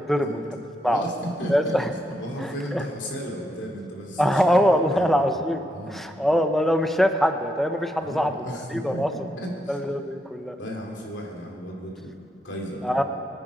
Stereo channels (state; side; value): normal; both; correlation 0.80